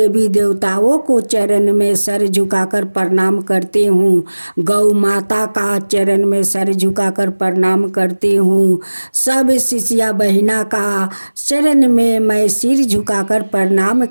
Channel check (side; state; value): both; inverted; correlation -1.00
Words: देवताओं को चरण में सर झुकाकर प्रणाम करती हूँ। गौ माता का चरण में सर झुकाकर प्रणाम करती हूँ। सब शिष्या बहिना का चरण में मैं सिर झुकाकर प्रणाम